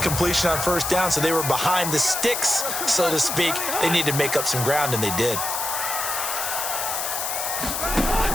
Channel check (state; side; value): noise; left; hiss, 2 dB below the sound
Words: on first down, so they were behind the sticks, so to speak. They needed to make up some ground, and they did.